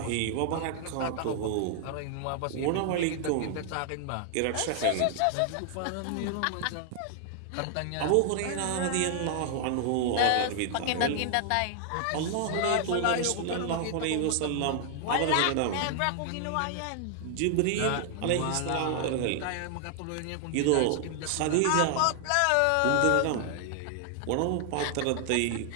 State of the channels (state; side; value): different; both; correlation 0.00